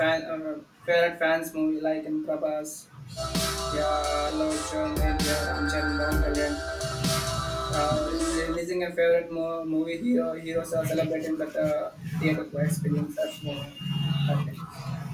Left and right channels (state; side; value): identical; both; correlation 1.00